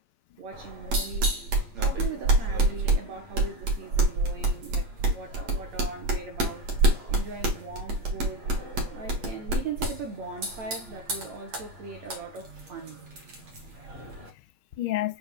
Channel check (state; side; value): late; left; 8.5 ms